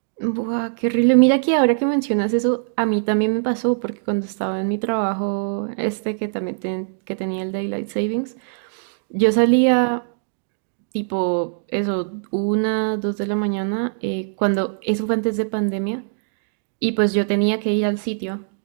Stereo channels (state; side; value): silent; left; digital silence